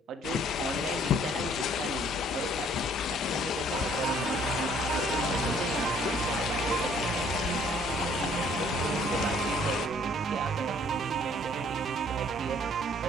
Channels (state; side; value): normal; both; correlation 0.60